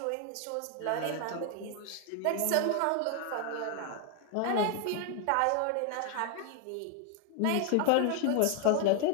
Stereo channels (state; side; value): different; both; correlation 0.01